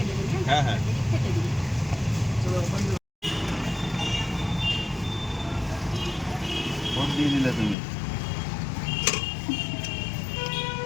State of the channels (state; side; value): drops out; right; at 7.8 s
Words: দেবেন। হ্যাঁ হ্যাঁ, এদিক থেকে দিন। ভোট দিয়ে দিলে তুমি।